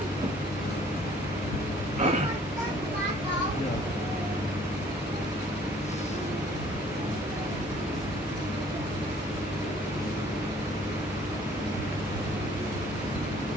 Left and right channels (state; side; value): normal; both; correlation 0.57